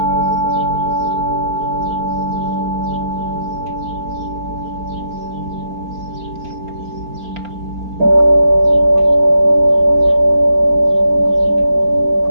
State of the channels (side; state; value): left; late; 4.4 ms